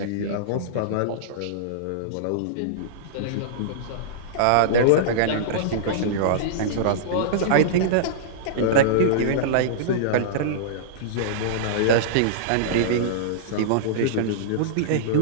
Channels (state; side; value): different; both; correlation -0.03